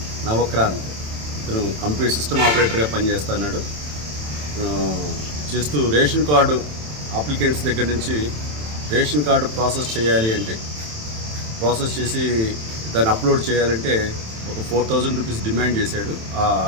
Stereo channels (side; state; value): left; late; 27 ms